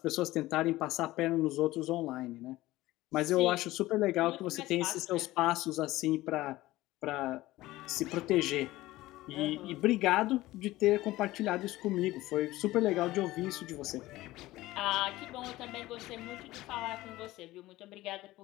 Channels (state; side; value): quieter; right; 17.5 dB